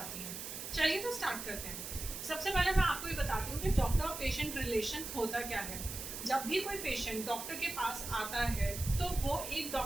आती हैं। चलिए तो स्टार्ट करते हैं। सबसे पहले मैं आपको ये बताती हूँ कि डॉक्टर और पेशेंट रिलेशन होता क्या है। जब भी कोई पेशेंट डॉक्टर के पास आता है तो वो एक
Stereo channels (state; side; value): noise; right; hiss, 7 dB below the sound